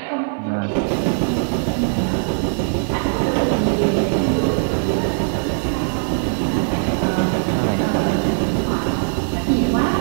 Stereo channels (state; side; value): silent; left; digital silence